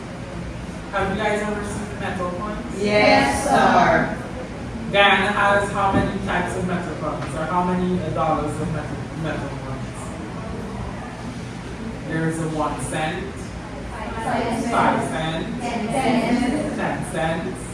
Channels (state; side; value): identical; both; correlation 1.00